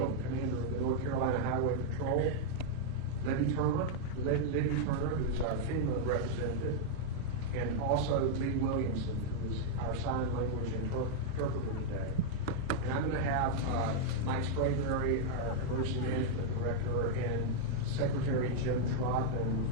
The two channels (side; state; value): both; different; correlation -0.02